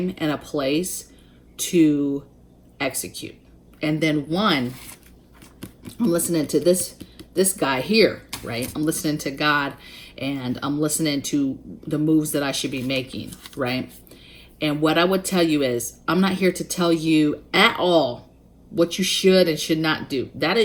and a place to execute. And then one, I'm listening to this guy here, right? I'm listening to God, and I'm listening to the moves that I should be making, right? And what I would tell you is, I'm not here to tell you at all what you should and should not do. That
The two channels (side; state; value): both; identical; correlation 1.00